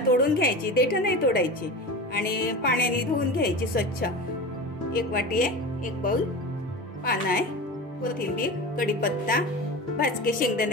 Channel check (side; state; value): both; normal; correlation 0.29